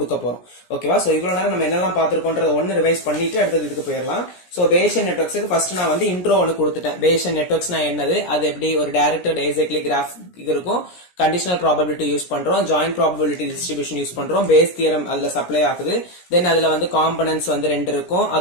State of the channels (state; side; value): late; right; 17 ms